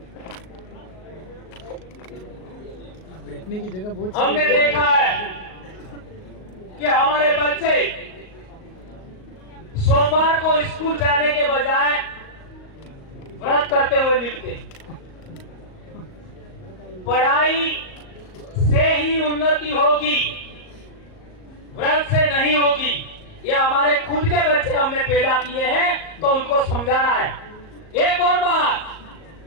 बैठने की जगह बहुत हमने देखा है कि हमारे बच्चे सोमवार को स्कूल जाने के बजाय व्रत करते हुए मिलते। पढ़ाई से ही उन्नति होगी, व्रत से नहीं होगी। ये हमारे खुद के बच्चे हमने पैदा किए हैं तो उनको समझाना है। एक और बात,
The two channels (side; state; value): right; late; 38 ms